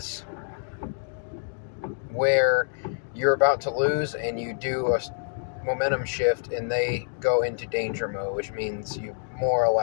where you're about to lose and you do a momentum shift and they go into danger mode, which means you more or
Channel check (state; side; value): silent; right; digital silence